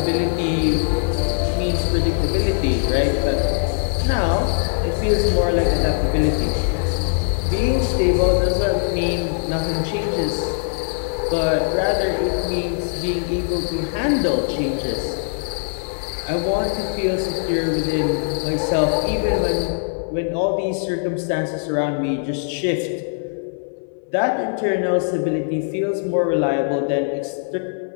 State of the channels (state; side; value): silent; right; 65 dB below the other